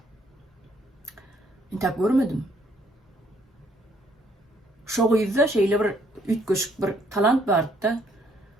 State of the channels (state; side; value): normal; both; correlation 0.67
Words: intap görmedim. Şo ýyzda şeýle bir ütgeşik bir talant barda,